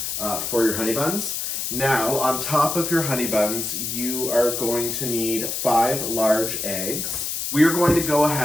for your honey buns. Now, on top of your honey buns, you are going to need 5 large eggs. We are going to go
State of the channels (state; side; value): noise; left; hiss, 3 dB below the sound